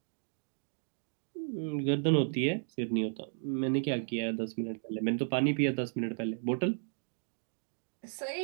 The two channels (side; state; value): left; silent; digital silence